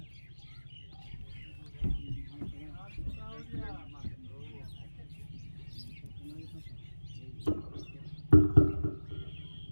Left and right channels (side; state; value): both; inverted; correlation -1.00